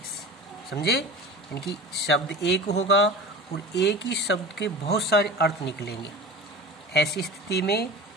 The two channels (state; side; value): normal; both; correlation 0.34